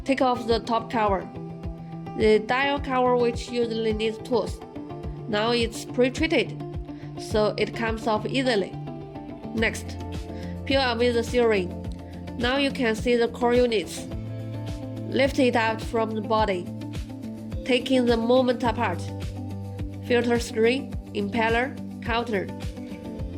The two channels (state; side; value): identical; both; correlation 1.00